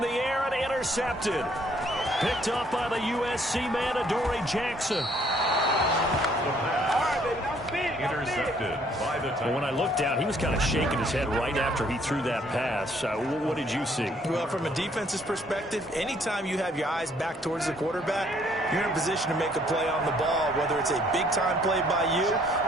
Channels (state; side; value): normal; both; correlation 0.64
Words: the air and intercepted. Picked up by the USC man, Adoree Jackson. Intercepted by the Titans. When I looked down, he was kind of shaking his head right after he threw that pass. What did you see? Well, from a defense's perspective, anytime you have your eyes back towards the quarterback, you're in a position to make a play on the ball, whether it's a big-time play by you